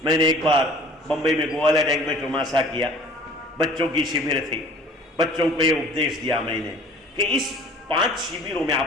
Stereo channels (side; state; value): both; normal; correlation 0.48